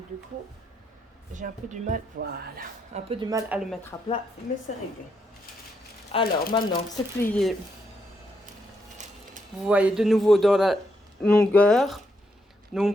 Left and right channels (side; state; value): both; normal; correlation 0.78